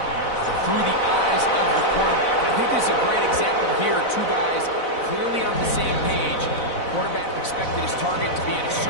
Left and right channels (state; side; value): late; right; 4.0 ms